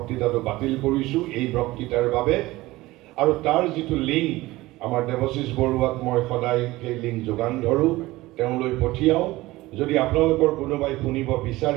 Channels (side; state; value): left; quieter; 18.8 dB